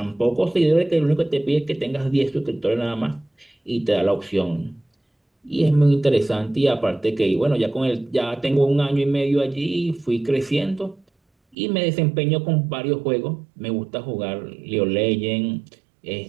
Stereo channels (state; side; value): drops out; left; at 11.6 s